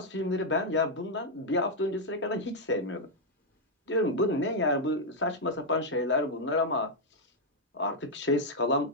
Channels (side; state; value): both; normal; correlation -0.02